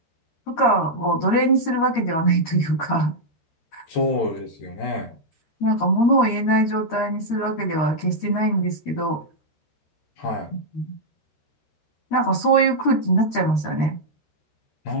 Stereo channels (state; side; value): late; right; 13 ms